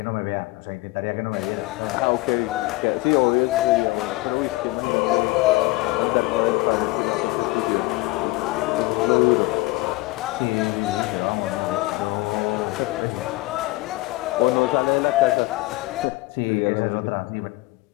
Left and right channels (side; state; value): right; quieter; 21.2 dB